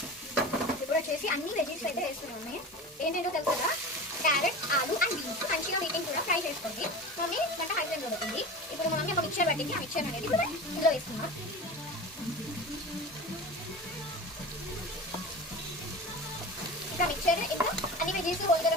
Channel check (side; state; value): both; normal; correlation 0.31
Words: ఇప్పుడు వచ్చేసి అన్ని వెజిటేబుల్స్ అయితే వేస్తున్నాము. ఏంటంటో తెలుసు కదా, క్యారెట్, ఆలు అండ్ బీన్స్ మంచిగా వీటిని కూడా ఫ్రై చేసుకోండి. మమ్మీ వంట హై ఫ్లేమ్లో పెడుతుంది. ఇప్పుడు మమ్మీ ఒక మిక్చర్ పట్టింది, ఆ మిక్చర్ అనేది కూడా ఇందులో వేస్తున్నాం. ఇంకా మిక్చర్ ఇంకా అన్ని వెజిటేబుల్స్ హోల్ గరం